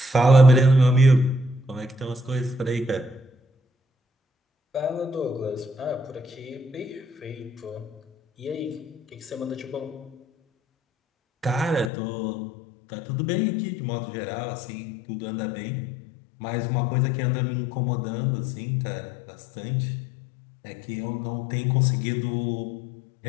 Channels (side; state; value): right; drops out; at 11.9 s